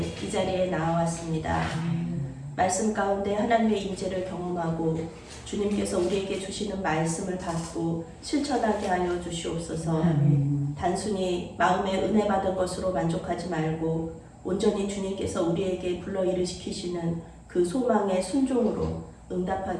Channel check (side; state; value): both; identical; correlation 1.00